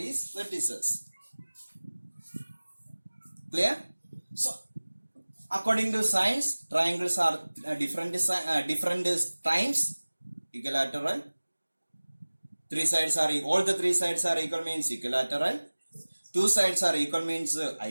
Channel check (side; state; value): both; inverted; correlation -1.00